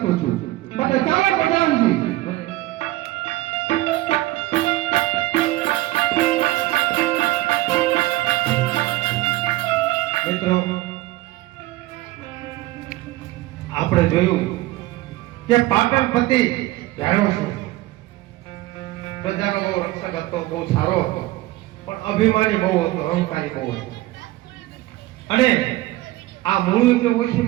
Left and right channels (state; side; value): quieter; left; 17.9 dB